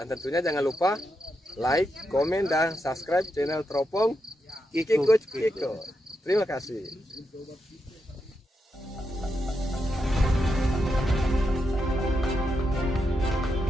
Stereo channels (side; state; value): both; normal; correlation 0.85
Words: tentunya jangan lupa like, komen, dan subscribe channel Teropong Kiko. Terima kasih.